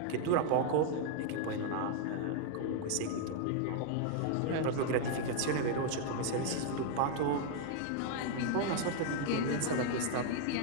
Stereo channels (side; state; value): both; different; correlation 0.00